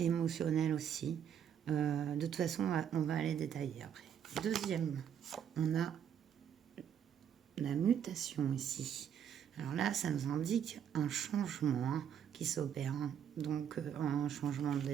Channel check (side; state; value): left; quieter; 8.8 dB